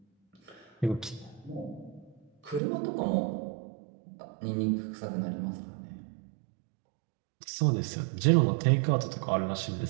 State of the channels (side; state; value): left; drops out; at 2.6 s